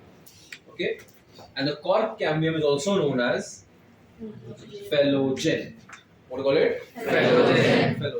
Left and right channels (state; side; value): identical; both; correlation 1.00